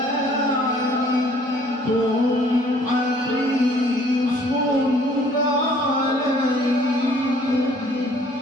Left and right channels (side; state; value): both; normal; correlation 0.57